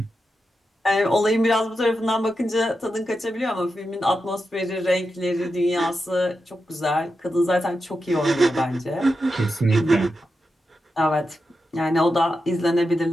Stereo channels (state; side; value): normal; both; correlation 0.88